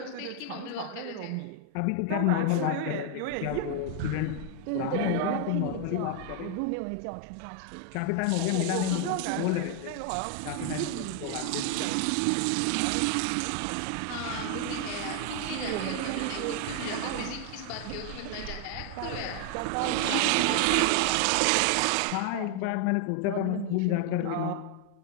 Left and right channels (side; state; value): both; different; correlation 0.00